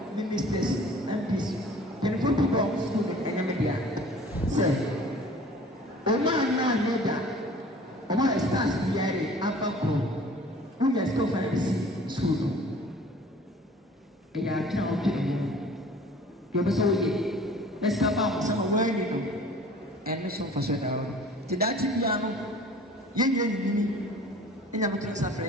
ministers MPs mpanyinfo pii ba hɔ school ɛnyɛmɛ bia sɛ ɔmo anaa nyɛ da ɔmo ayɛ stars biara afa koro wonyɛ school fa ɛsi school no ɛyɛ atwene ɔtwe ɛyɛ deɛ ɔbɛ sɛ ɔyɛ ɛsika ba ɔmo sɛ ma wɔn ani no ɛno so mfa so da hɔ te daakye biara no yɛnyɛ nyini ɛnya mo tena safrɛ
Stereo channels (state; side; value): normal; both; correlation 0.47